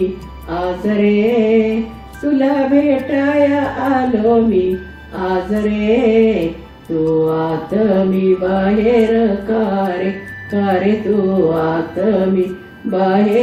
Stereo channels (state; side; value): identical; both; correlation 1.00